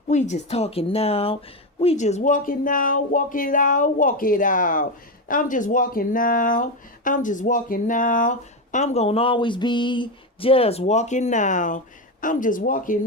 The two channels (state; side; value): normal; both; correlation 0.12